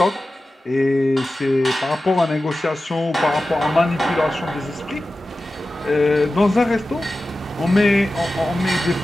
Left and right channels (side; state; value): both; normal; correlation 0.94